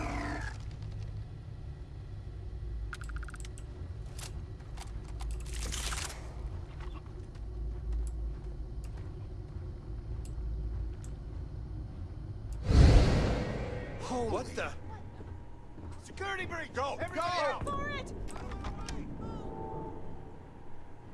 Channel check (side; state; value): both; identical; correlation 1.00